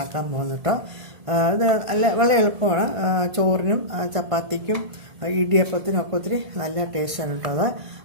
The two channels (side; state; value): left; late; 1.7 ms